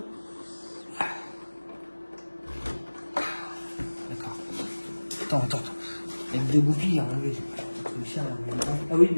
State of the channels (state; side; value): inverted; both; correlation -1.00